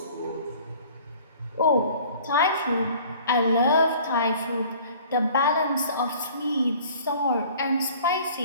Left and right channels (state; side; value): inverted; both; correlation -0.50